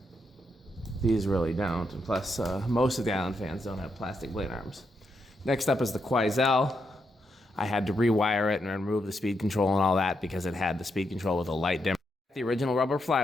These really don't, and plus most of the Island fans don't have plastic blade arms. Next up is the Quoizel. I had to rewire it and remove the speed control and all that because it had the speed control with a light dimmer. The original rubber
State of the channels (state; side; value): normal; both; correlation 0.81